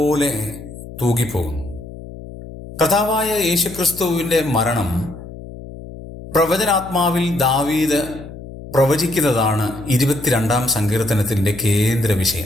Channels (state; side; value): noise; left; hum, 14 dB below the sound